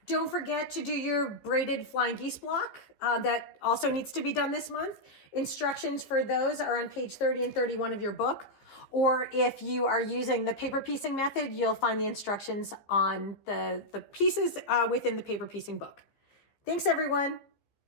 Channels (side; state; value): right; late; 15 ms